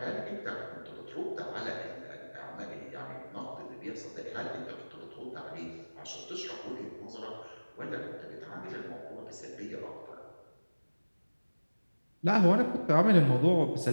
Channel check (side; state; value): both; inverted; correlation -1.00